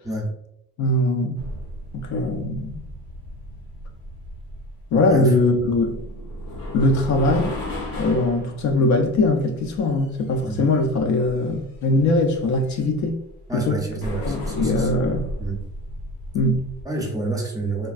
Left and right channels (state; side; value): normal; both; correlation 0.31